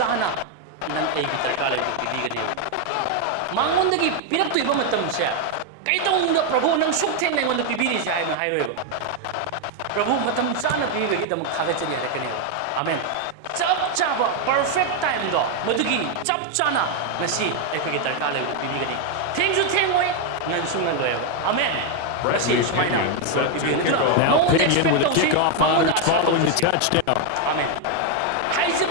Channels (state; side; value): different; both; correlation 0.01